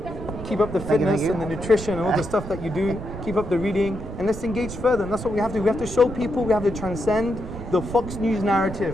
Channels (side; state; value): right; noise; rumble, 9 dB below the sound